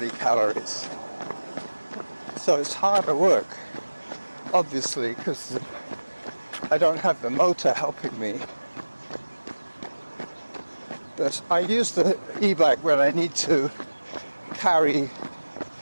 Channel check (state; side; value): inverted; both; correlation -1.00